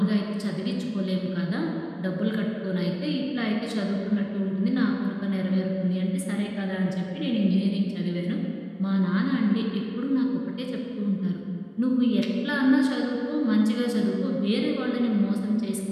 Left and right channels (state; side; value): identical; both; correlation 1.00